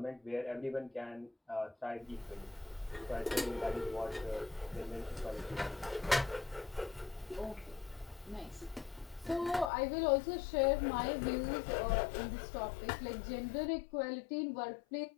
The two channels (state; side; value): drops out; right; at 9.7 s